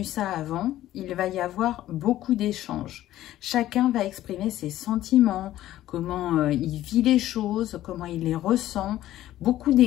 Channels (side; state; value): right; quieter; 13.9 dB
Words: ça avant, il va y avoir beaucoup d'échanges. Chacun va exprimer ses sentiments, comment il vit les choses, comment il les ressent, beaucoup